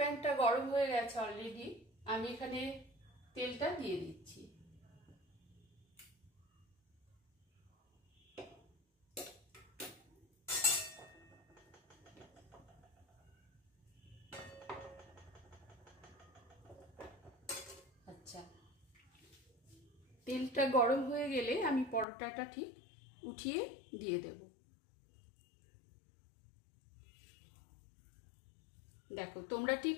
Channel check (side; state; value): right; drops out; at 22.1 s